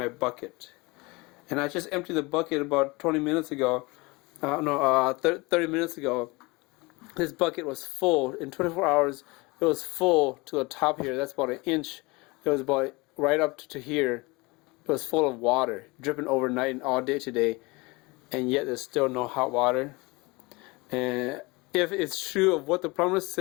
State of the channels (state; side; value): quieter; right; 24.8 dB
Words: bucket. And I just emptied the bucket about 20 minutes ago. 30 minutes ago. This bucket was full. In 24 hours, it was full to the top here. That's about an inch. It was about right up to here. It was full of water, dripping overnight and all day today. And yet there's still no hot water. And if it's true of what the plumber